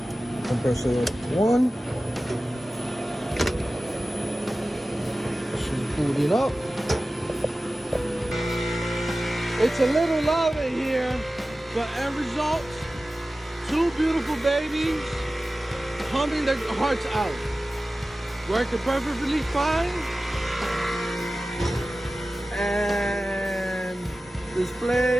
compressor 1. She's booting up. It's a little loud in here, but end result, two beautiful babies humming their hearts out. Working perfectly fine. And display.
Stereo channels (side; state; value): both; normal; correlation 0.96